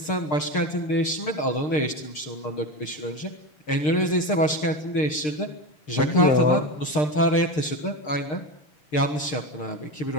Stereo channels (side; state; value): right; late; 6.6 ms